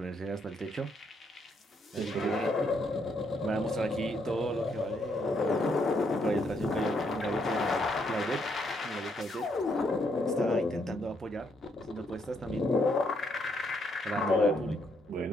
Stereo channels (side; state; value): both; normal; correlation 0.74